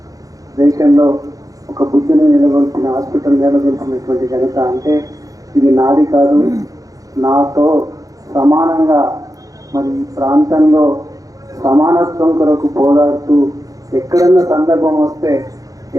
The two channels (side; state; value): left; late; 0.17 ms